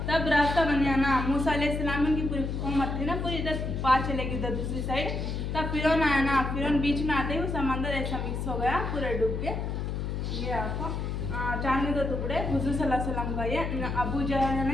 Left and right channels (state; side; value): noise; left; hum, 3 dB below the sound